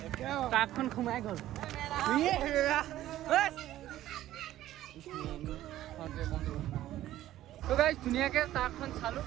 ট্ৰাকখন সোমাই গ'ল তো গাইজ ধুনীয়াকৈ ট্ৰাকখন চালোঁ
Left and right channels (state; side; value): quieter; left; 13.8 dB